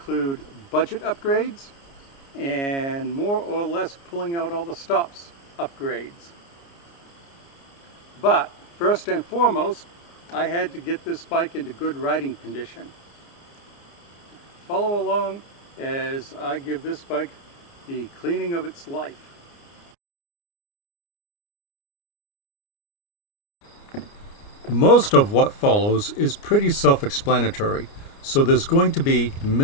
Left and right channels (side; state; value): right; late; 29 ms